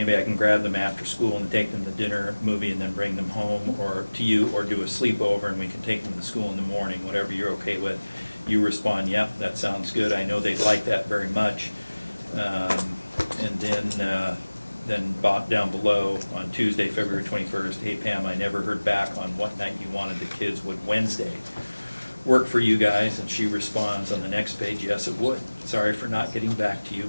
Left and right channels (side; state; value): both; inverted; correlation -1.00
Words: I can grab them after school and take them to dinner, movie, and then bring them home, or to you, or do a sleepover and we can take them to school in the morning, whatever you're okay with. You respond, yep, that sounds good. I know they'd like that very much. And then down below on Tuesday, February 21st, hey Pam, I never heard back on what night you wanted the kids. Would Wednesday work for you guys? And she responds on the next page, yes, it would. Sorry for not getting back to you.